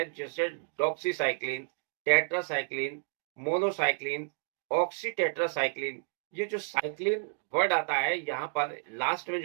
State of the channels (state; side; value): silent; left; digital silence